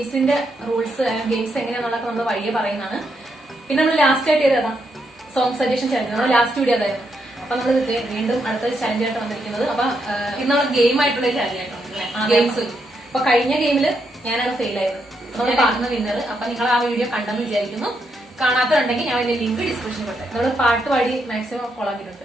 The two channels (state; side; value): normal; both; correlation 0.80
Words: റൂൾസ് ഗെയിംസ് എങ്ങനെയാണെന്നുള്ളത് നമ്മൾ വഴിയെ പറയുന്നതാണ്. പിന്നെ നമ്മൾ ലാസ്റ്റ് ആയിട്ട് ചെയ്തതാ സോങ് സജഷൻ ചലഞ്ച്. നമ്മൾ ലാസ്റ്റ് വീഡിയോ അതായിരുന്നു. അപ്പൊ നമ്മൾ വീണ്ടും അടുത്ത ചലഞ്ച് ആയിട്ട് വന്നിരിക്കുന്നത്. അപ്പൊ ഇന്ന് നമ്മൾ ഗെയിം ആയിട്ടുള്ള ചലഞ്ച് ആയിട്ടുണ്ട് ഗെയിംസ്. അപ്പൊ കഴിഞ്ഞ ഗെയിമില് ഞാനാണ് ഫെയിൽ ആയത്. നമ്മൾ പാടുന്ന വിന്നർ. അപ്പൊ നിങ്ങൾ ആ വീഡിയോ കണ്ടെന്ന് വിചാരിക്കുന്നു. കാണാത്തതുണ്ടെങ്കിൽ ഞാൻ അതിന്റെ ലിങ്ക് ഡിസ്ക്രിപ്ഷനിൽ കൊടുത്തേ. നമ്മൾ പാട്ട് പാടി മാക്സിമം ഫോളോ